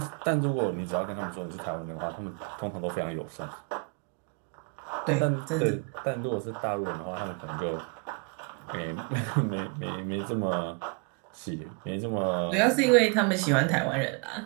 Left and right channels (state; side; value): quieter; left; 34.9 dB